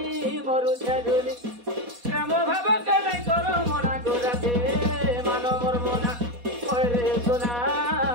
प्रेम भाव के नहीं करो मना गोराते मानो मोर मना ओरे सोना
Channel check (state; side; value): late; left; 4.2 ms